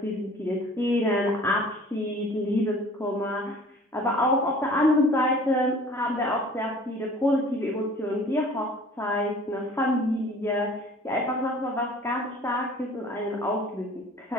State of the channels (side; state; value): both; normal; correlation 0.48